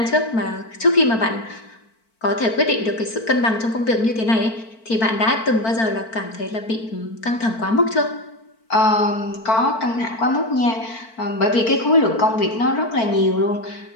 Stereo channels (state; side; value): late; right; 4.5 ms